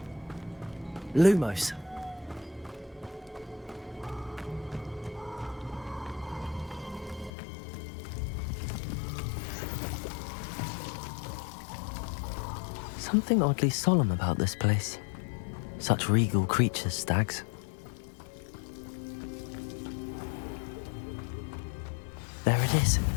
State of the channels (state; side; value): drops out; right; at 7.3 s